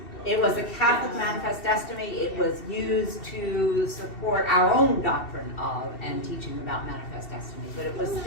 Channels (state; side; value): late; right; 2.7 ms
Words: It was a Catholic Manifest Destiny. It was used to support our own doctrine of and teaching about Manifest Destiny, but it was